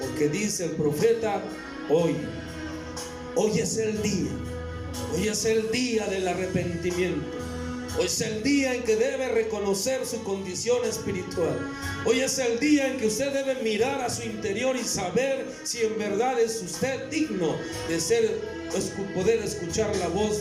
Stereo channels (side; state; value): both; identical; correlation 1.00